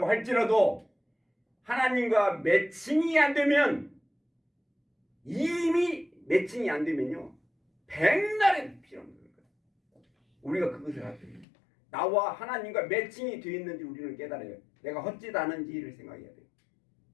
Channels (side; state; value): right; drops out; at 11.5 s